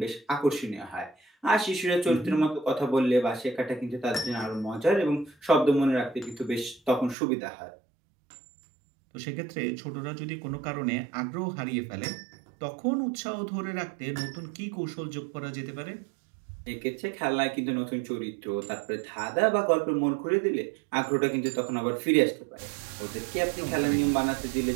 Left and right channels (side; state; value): left; drops out; at 7.2 s